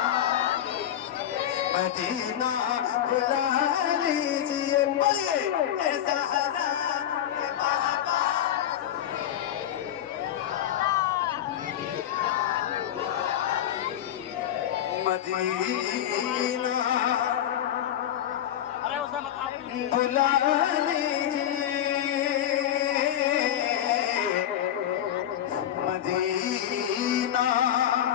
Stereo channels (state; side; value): quieter; right; 11.0 dB